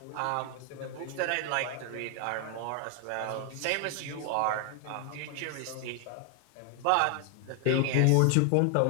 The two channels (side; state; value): both; different; correlation 0.00